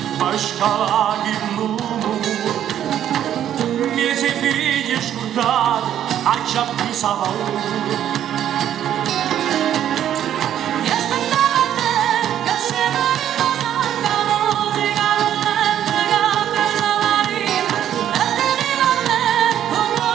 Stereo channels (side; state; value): left; quieter; 10.6 dB